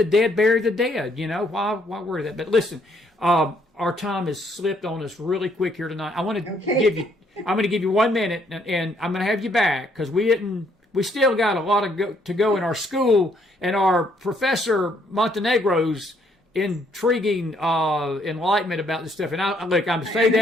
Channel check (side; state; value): both; normal; correlation 0.68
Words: dead bury the dead. Why worry that? But listen, our time has slipped on us really quick here tonight. I'm going to give you 1 minute, and I'm going to have you back, because we still got a lot to go in our school, and our Professor Montenegro's intriguing enlightenment about this stuff. And I'm saying